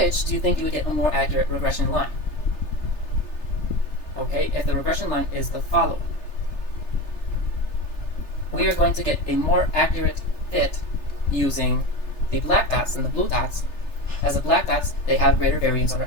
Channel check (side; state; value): right; late; 3.3 ms